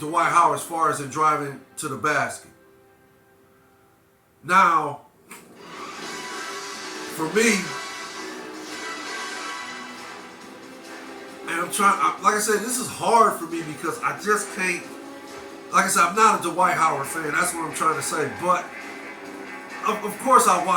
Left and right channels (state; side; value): identical; both; correlation 1.00